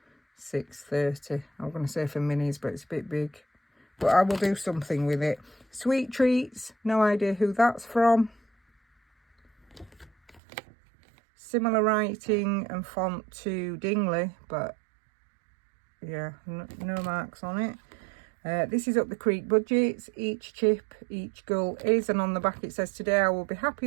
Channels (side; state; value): left; drops out; at 10.4 s